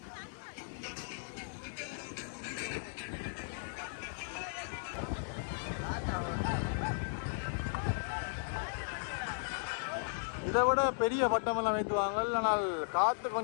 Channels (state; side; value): silent; right; digital silence